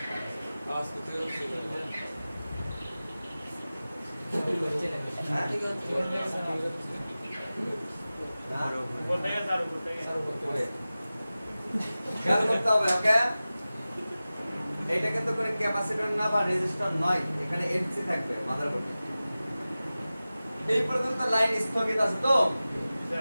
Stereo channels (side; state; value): both; inverted; correlation -0.96